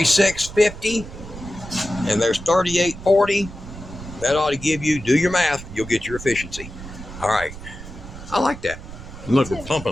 And there's 3840. That ought to give you, do your math, you'll get your efficiency. All right. I like that. Look, we're pumping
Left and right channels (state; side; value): noise; right; rumble, 13 dB below the sound